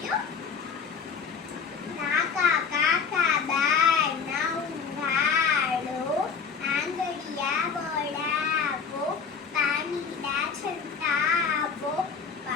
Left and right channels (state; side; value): quieter; right; 5.9 dB